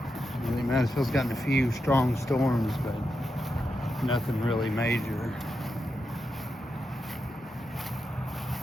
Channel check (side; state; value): both; normal; correlation 0.86